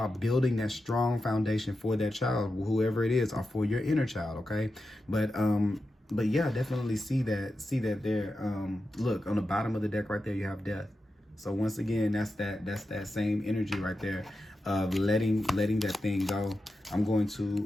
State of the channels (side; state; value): both; normal; correlation 0.90